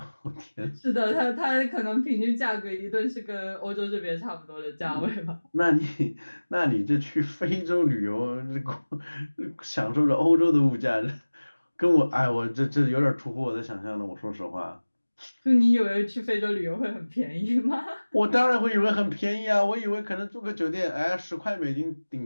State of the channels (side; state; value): both; inverted; correlation -1.00